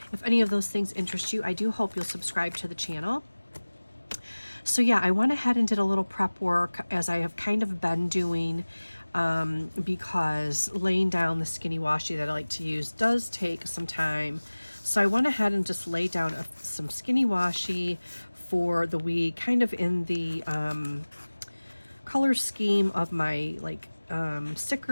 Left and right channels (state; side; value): inverted; both; correlation -1.00